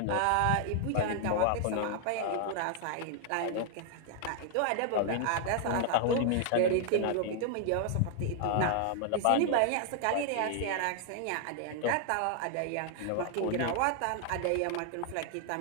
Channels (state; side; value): different; both; correlation 0.00